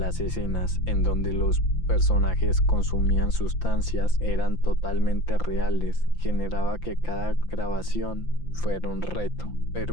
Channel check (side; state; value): right; late; 5.8 ms